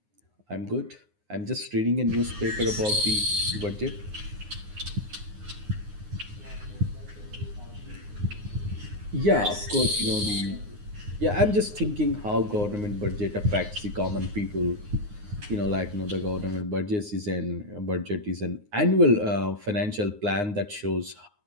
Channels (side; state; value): left; late; 9.6 ms